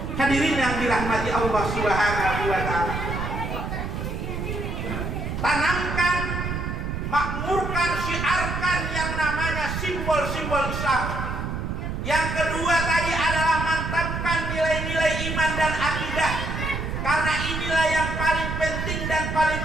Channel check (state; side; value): noise; right; rumble, 4 dB below the sound